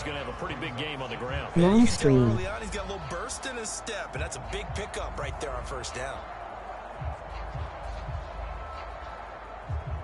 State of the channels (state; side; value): identical; both; correlation 1.00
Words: going to have a pretty big game on the ground. Long stream. Early on, he's got a little burst in his step, and that's a big pickup right there on 1st down.